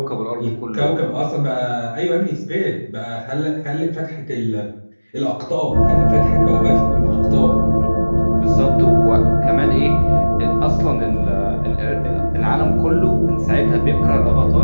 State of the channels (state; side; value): inverted; both; correlation -1.00